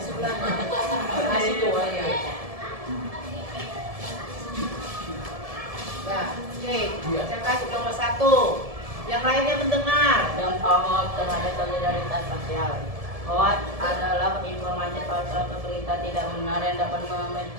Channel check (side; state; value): left; late; 1.7 ms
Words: Nah, situ ya. Ya, oke. Bacakan kelompok 1. Yang lainnya mendengar. Dampak hoax terhadap solidaritas sosial. Hoax adalah informasi palsu atau berita tidak benar yang dapat